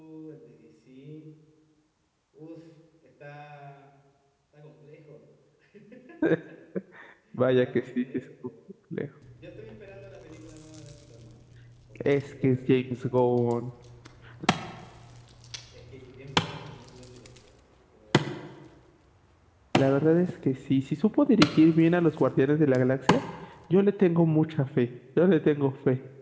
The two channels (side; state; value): both; identical; correlation 1.00